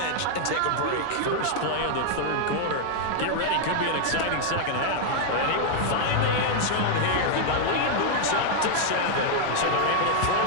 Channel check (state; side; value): different; both; correlation 0.00